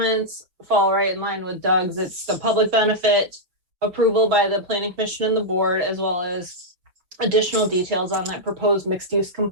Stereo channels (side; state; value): left; late; 5.9 ms